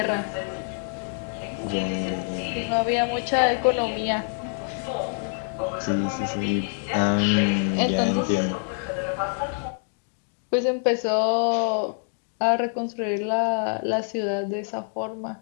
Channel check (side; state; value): right; silent; 61 dB below the other